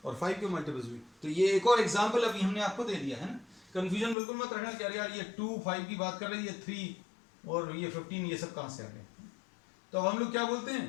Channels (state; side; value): drops out; right; at 4.2 s